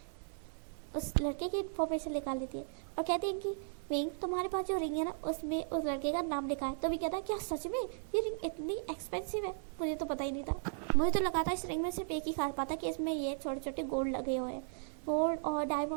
उस लड़के की इन्फॉर्मेशन निकाल लेती है और कहती है कि विंग तुम्हारे पास जो रिंग है ना उसमें उस लड़के का नाम लिखा है। तो भी कहता है क्या सच में ये रिंग इतनी एक्सपेंसिव है, मुझे तो पता ही नहीं था। मुझे तो लगा था इस रिंग में सिर्फ एक ही खास बात है कि इसमें ये छोटे छोटे गोल्ड लगे हुए हैं, गोल्ड और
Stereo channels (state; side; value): silent; left; digital silence